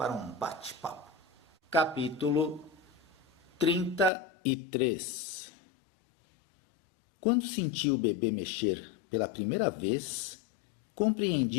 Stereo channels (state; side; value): drops out; right; at 4.1 s